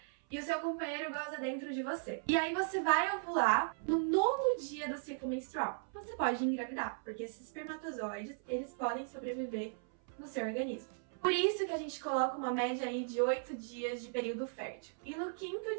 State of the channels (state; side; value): silent; left; 53 dB below the other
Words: e o seu companheiro goza dentro de você. E aí você vai ovular no 9º dia do ciclo menstrual. Você pode engravidar, porque esses espermatozoides, eles podem sobreviver no seu organismo. Por isso que a gente coloca uma média aí de 8 dias de período fértil. E no 5º